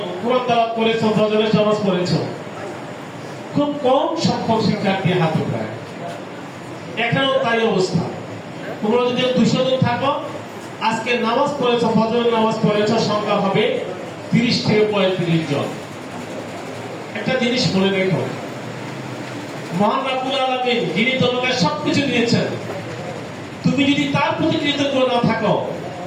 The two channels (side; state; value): both; identical; correlation 1.00